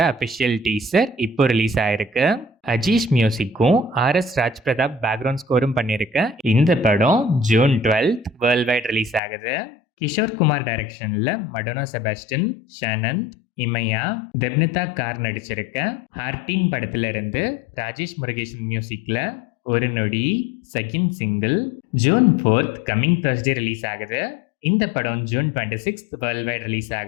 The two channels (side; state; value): right; drops out; at 9.2 s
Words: அஃபிஷியல் டீசர் இப்போ ரிலீஸ் ஆயிருக்கு. அஜீஷ் மியூசிக்கும் ஆர்எஸ் ராஜ் பிரதாப் பேக்ரவுண்ட் ஸ்கோரும் பண்ணியிருக்க இந்த படம் ஜூன் 12 வேர்ல்ட் வைட் ரிலீஸ் ஆகுது. கிஷோர் குமார் டைரக்ஷனில் மடோனா செபாஸ்டின், ஷானந்த், இமையா, தெப்னிதா கார் நடிச்சிருக்க ஹார்டின் படத்துல இருந்து ராஜேஷ் முருகேசன் மியூசிக்ல ஒரு நொடி second single June 4 coming Thursday release ஆகுது. இந்த படம் ஜூன் 26 வேர்ல்ட் வைட் ரிலீஸ்